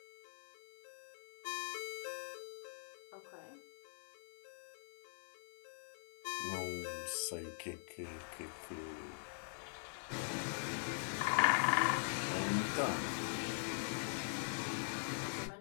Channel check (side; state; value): right; silent; digital silence